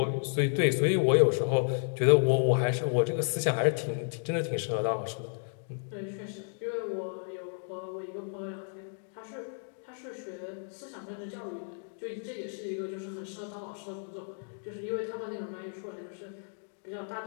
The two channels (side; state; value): right; silent; digital silence